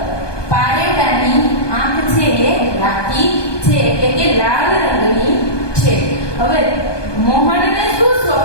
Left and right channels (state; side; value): late; right; 1.2 ms